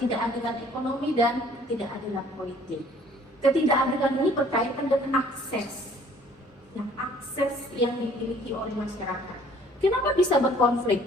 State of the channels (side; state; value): both; normal; correlation 0.56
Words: ekonomi, dan ketidakadilan politik. Ketidakadilan ini berkaitan dengan akses yang dimiliki oleh masyarakat. Kenapa bisa berkonflik?